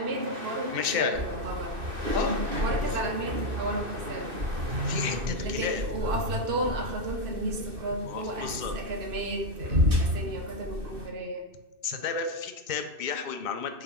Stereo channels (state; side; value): late; left; 2.6 ms